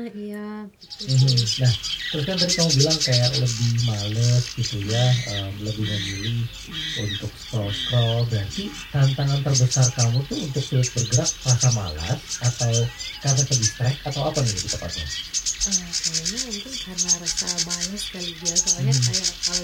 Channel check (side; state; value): both; identical; correlation 1.00